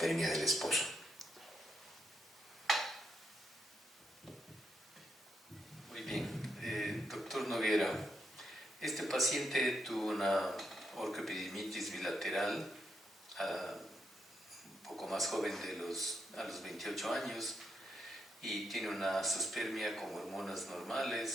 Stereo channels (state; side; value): normal; both; correlation 0.81